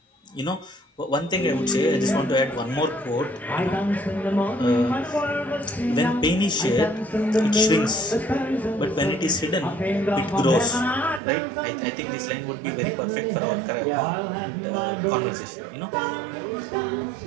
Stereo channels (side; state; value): left; drops out; at 11.2 s